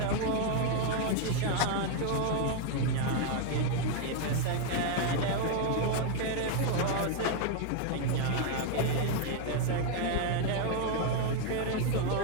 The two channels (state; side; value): different; both; correlation 0.01